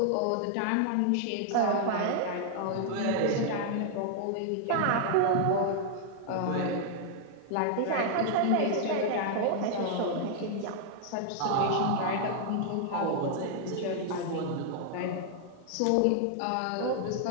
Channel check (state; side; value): different; both; correlation 0.00